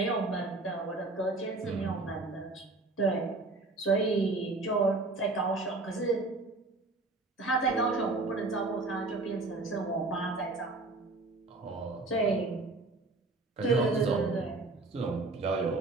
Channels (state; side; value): quieter; left; 3.2 dB